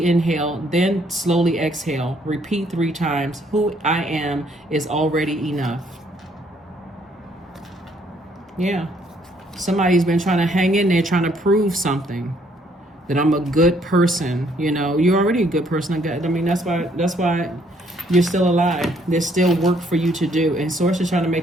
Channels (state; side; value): normal; both; correlation 0.66